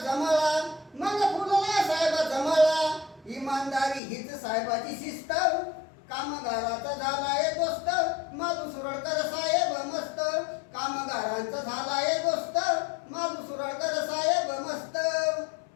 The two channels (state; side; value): drops out; right; at 4.0 s